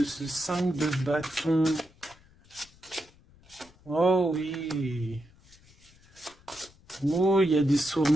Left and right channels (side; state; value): left; noise; rumble, 27 dB below the sound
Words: ce 5 de bâton. Oh oui. Oh, il y a des